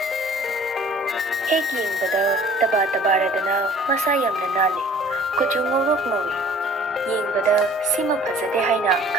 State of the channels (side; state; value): both; normal; correlation 0.51